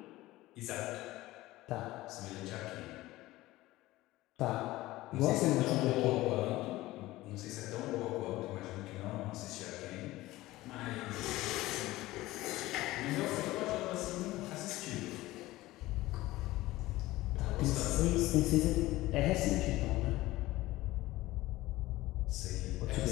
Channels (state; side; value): quieter; right; 17.8 dB